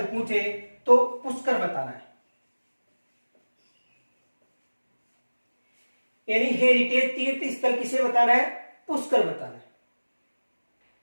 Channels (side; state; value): both; inverted; correlation -1.00